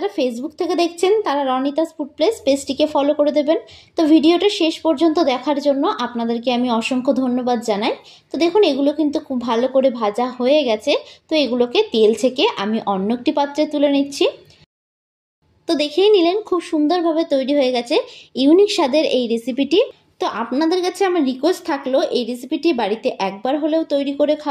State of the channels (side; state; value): both; identical; correlation 1.00